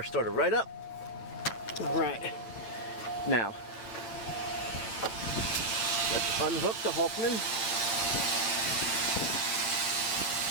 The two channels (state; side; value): late; right; 9.0 ms